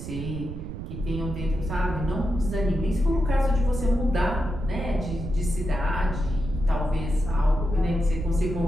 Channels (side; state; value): right; noise; rumble, 8 dB below the sound